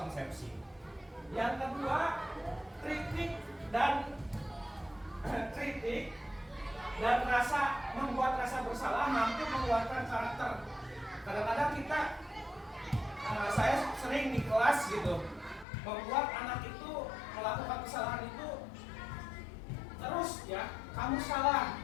Yang kedua, kritik dan membuat rasa bersalah mampu mengeluarkan karakter. Kadang-kadang kita, saya sering di kelas gitu, membuat anak itu melakukan kesalahan itu terus ya, kamu salah,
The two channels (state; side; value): drops out; right; at 15.7 s